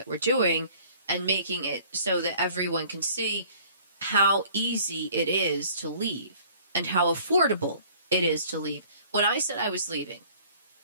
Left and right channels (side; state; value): both; inverted; correlation -0.53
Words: we're doing and making it so that everyone can see how easy it is to leave and how affordable it is to leave. When I said I was leaving,